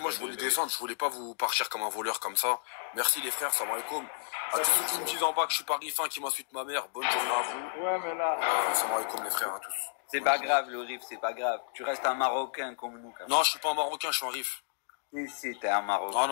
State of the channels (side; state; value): right; silent; digital silence